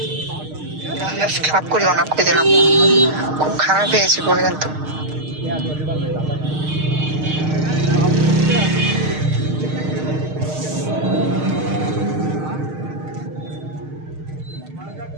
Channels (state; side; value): late; left; 6.5 ms